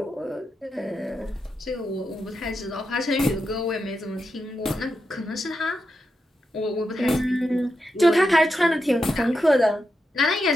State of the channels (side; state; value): both; normal; correlation 0.86